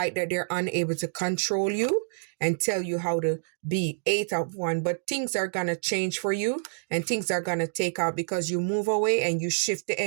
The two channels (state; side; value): silent; left; digital silence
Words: that they're unable to control you and tell you how to be. 8 of Wands. But things are going to change for you and things are going to take out because you move away and you shift the